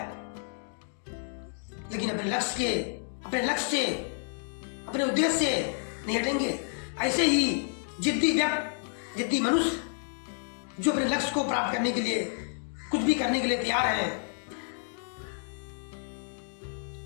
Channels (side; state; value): right; silent; 58 dB below the other